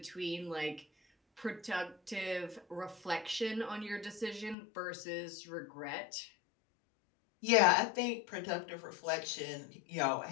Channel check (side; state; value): right; drops out; at 4.5 s